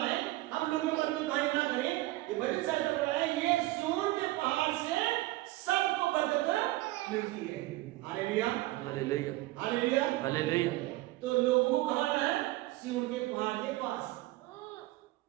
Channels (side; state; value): left; quieter; 18.7 dB